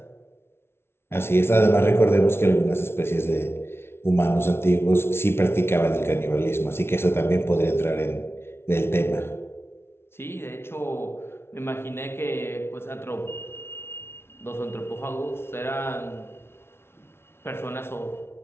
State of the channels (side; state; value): right; late; 0.12 ms